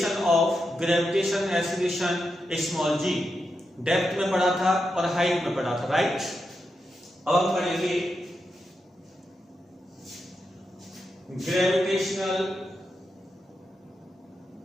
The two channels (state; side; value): normal; both; correlation 0.86